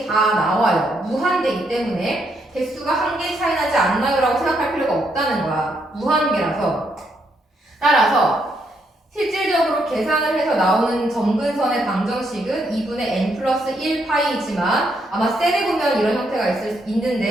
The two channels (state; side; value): normal; both; correlation 0.76